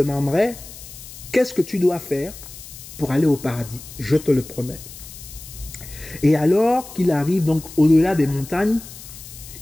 qu'est-ce que tu dois faire pour aller au paradis? Je te le promets. Et alors qu'il arrive donc au-delà des montagnes,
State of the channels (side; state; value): left; noise; hiss, 15 dB below the sound